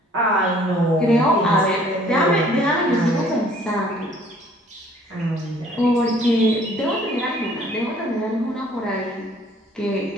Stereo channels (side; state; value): both; normal; correlation 0.57